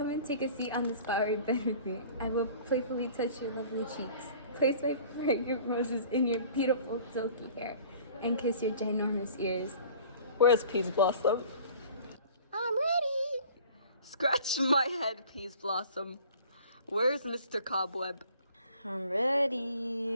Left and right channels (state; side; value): inverted; both; correlation -0.48